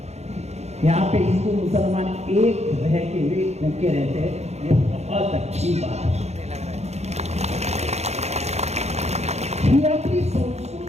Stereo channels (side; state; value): left; late; 0.31 ms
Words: यहाँ पे हिंदू मुसलमान एक रह के वे भूखे रहते हैं, ये बहुत अच्छी बात है। ही आपली